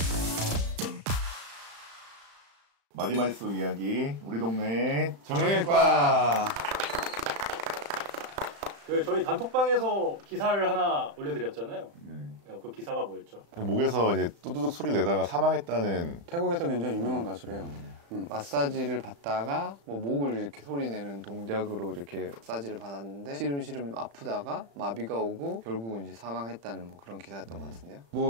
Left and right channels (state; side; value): late; left; 35 ms